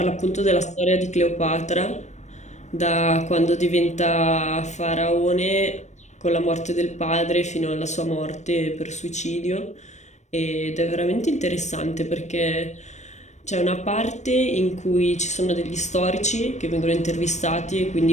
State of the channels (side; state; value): right; late; 0.34 ms